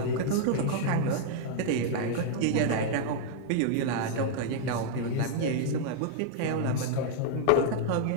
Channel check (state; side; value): different; both; correlation -0.01